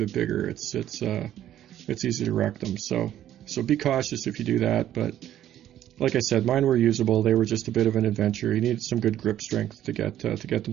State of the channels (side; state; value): left; quieter; 11.9 dB